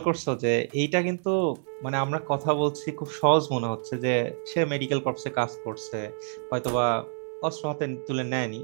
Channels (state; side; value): silent; left; digital silence